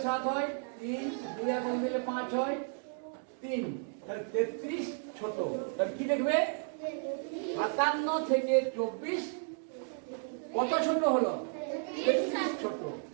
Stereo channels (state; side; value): silent; left; 55 dB below the other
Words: 7 হয়? 3। 2 কত দিলে 5 হয়? 3। তাহলে 33 ছোট। তাহলে কি লিখবে? 57 থেকে 24 কত ছোট হলো? 33 ছোট।